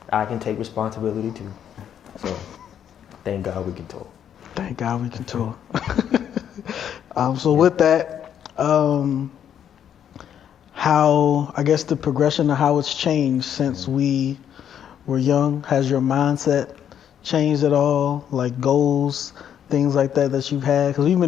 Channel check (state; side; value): quieter; right; 9.3 dB